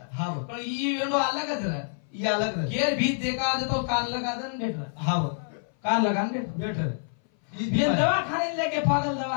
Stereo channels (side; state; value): right; silent; 58 dB below the other